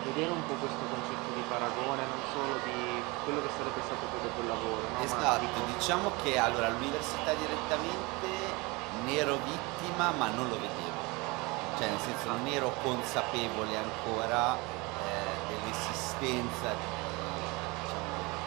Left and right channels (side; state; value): left; quieter; 25.5 dB